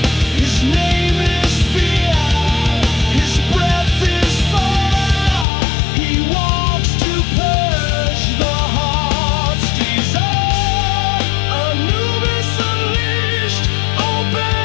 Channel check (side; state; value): right; drops out; at 5.5 s